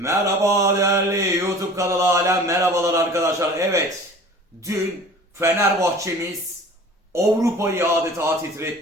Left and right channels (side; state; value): both; normal; correlation 0.43